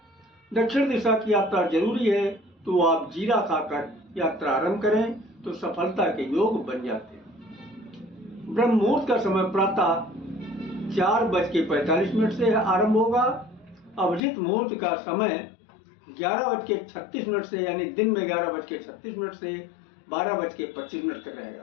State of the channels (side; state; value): right; drops out; at 14.2 s